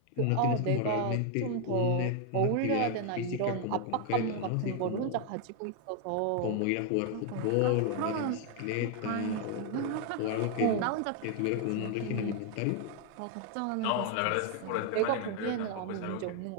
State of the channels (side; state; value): both; different; correlation 0.00